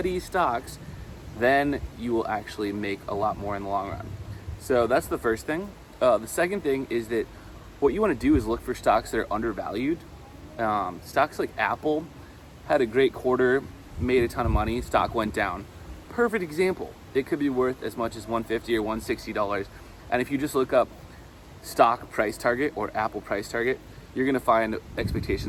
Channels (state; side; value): identical; both; correlation 1.00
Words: stocks, then you will actually make a lot more in the long run. So that's the first thing. The second thing is that what you want to do is look for stocks that are undervalued. Stocks like Apple had a great quarter, made a ton of money, stock went down. Perfect example. It could be worth as much as $150 or $160. And if you just look up stock price target or Apple price target, you're going to find